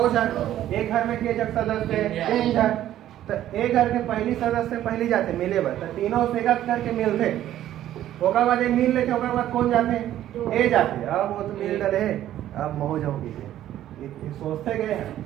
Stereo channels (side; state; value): left; quieter; 12.5 dB